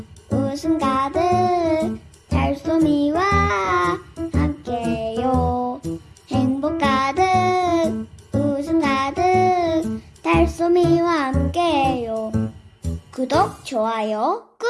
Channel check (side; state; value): both; identical; correlation 1.00